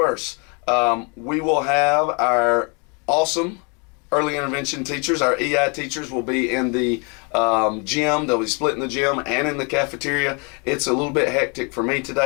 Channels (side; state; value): right; quieter; 33.8 dB